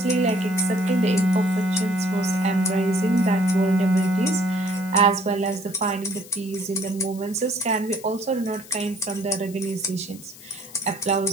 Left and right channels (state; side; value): noise; left; hiss, 19 dB below the sound